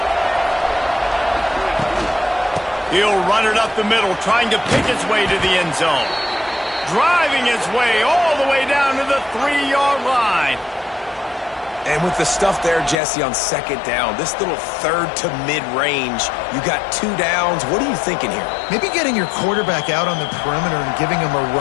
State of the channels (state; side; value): drops out; right; at 13.0 s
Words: He'll run it up the middle, trying to pick its way to the end zone. Driving its way all the way down to the 3-yard line. And with the stuff there, Jesse, on second down, this little third to mid-range, you got 2 downs. What are you thinking here? Maybe getting your quarterback out on the perimeter and giving him a